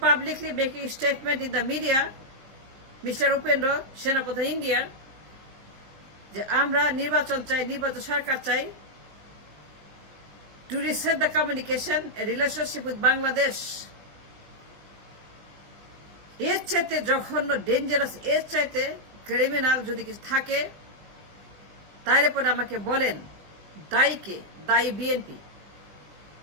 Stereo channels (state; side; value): late; left; 19 ms